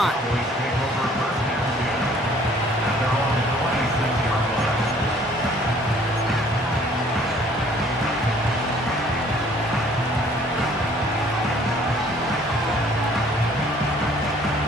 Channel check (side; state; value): both; normal; correlation 0.57